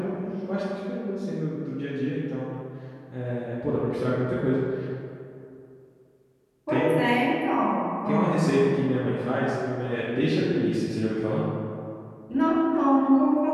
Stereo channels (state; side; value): identical; both; correlation 1.00